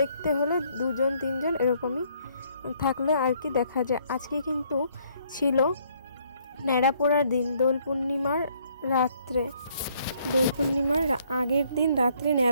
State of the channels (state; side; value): inverted; both; correlation -0.66